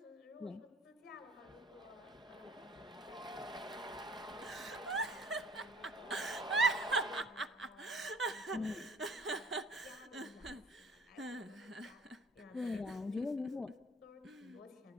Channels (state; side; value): normal; both; correlation 0.52